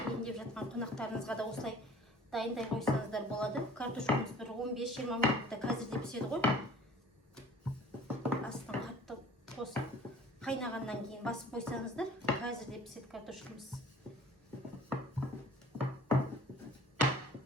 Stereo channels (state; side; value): normal; both; correlation 0.48